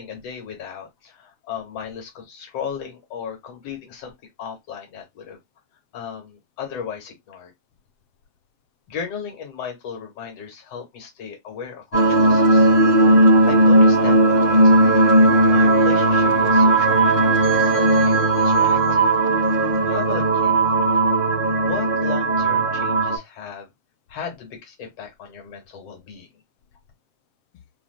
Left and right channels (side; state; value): right; late; 7.6 ms